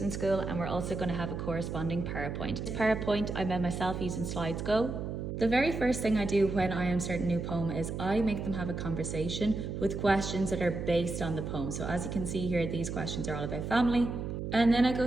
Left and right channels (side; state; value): right; noise; hum, 5 dB below the sound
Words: in school, and we're also going to have a corresponding PowerPoint. This PowerPoint I made myself using Slides Go. The very first thing I do when I am starting a new poem is I make them have a conversation with questions that are based on the poem. So as you can see here, these questions are all about family. And then I go